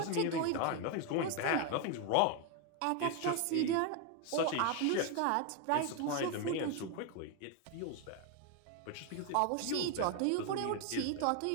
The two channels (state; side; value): different; both; correlation 0.01